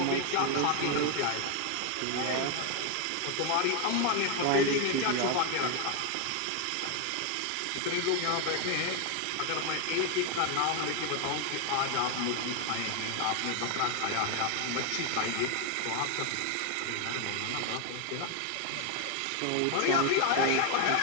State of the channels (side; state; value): both; different; correlation 0.01